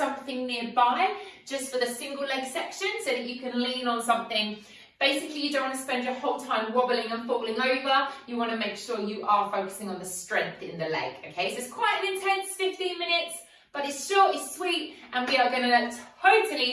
nearby just for the single leg section so that you can lean on something. Basically, you don't want to spend your whole time wobbling and falling over. You want to make sure you are focusing on the strength in the leg, okay? So it's quite an intense 15 minutes, but it's short, it's sweet, and we are going to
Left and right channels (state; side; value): identical; both; correlation 1.00